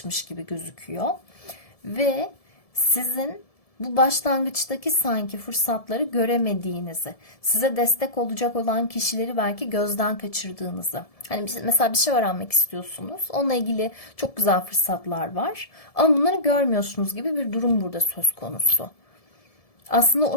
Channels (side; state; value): right; late; 1.7 ms